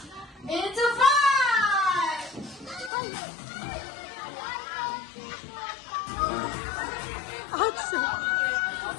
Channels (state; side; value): drops out; right; at 2.9 s